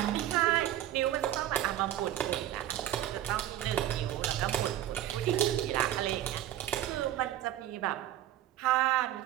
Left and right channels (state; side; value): quieter; left; 12.8 dB